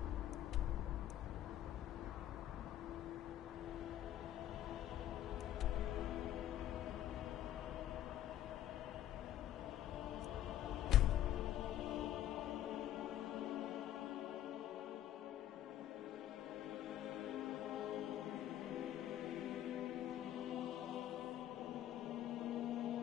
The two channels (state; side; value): quieter; right; 12.1 dB